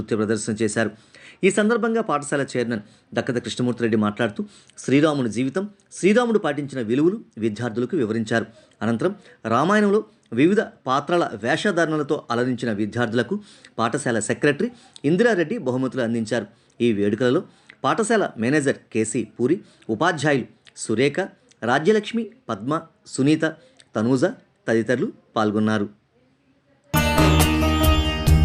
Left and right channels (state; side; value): identical; both; correlation 1.00